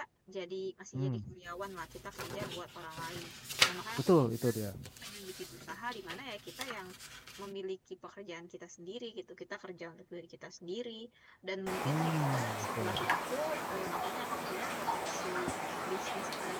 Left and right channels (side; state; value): both; identical; correlation 1.00